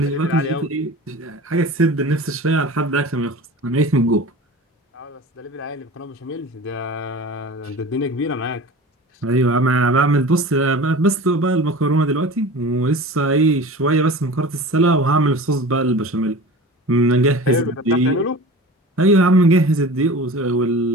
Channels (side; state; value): both; normal; correlation 0.37